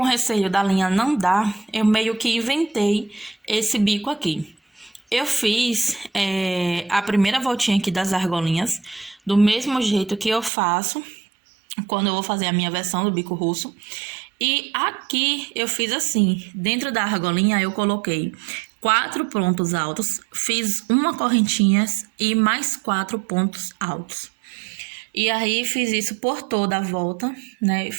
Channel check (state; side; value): drops out; left; at 10.5 s